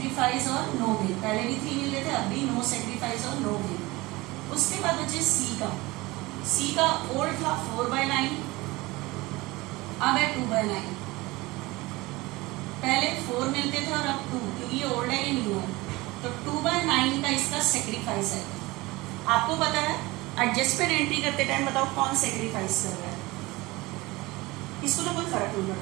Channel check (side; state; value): left; quieter; 21.4 dB